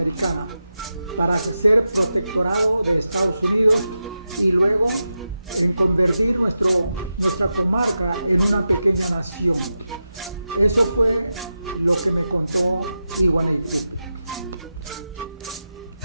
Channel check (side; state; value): both; inverted; correlation -0.90